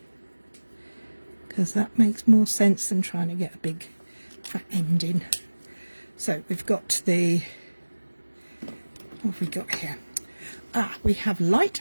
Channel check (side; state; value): both; inverted; correlation -1.00